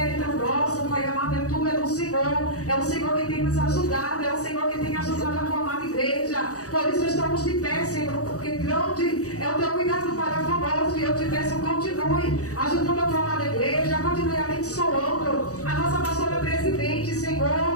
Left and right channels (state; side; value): late; right; 0.66 ms